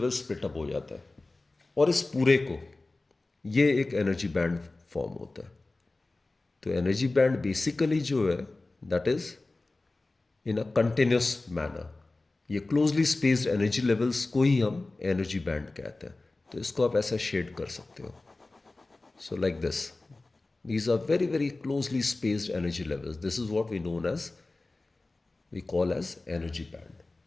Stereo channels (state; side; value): quieter; right; 3.2 dB